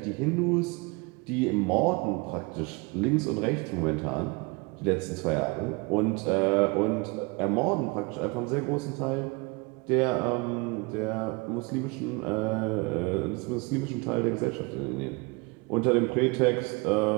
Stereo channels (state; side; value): quieter; left; 28.0 dB